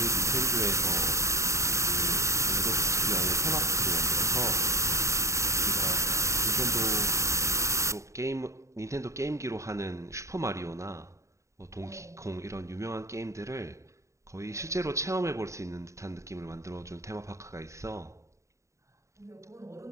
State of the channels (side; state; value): left; late; 0.14 ms